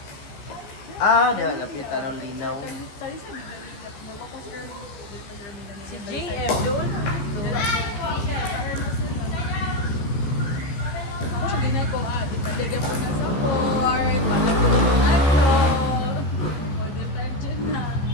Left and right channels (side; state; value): right; late; 14 ms